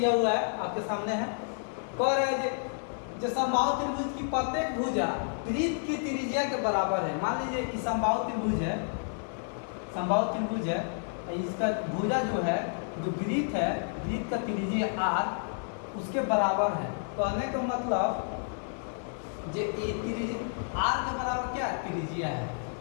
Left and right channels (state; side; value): silent; right; 58 dB below the other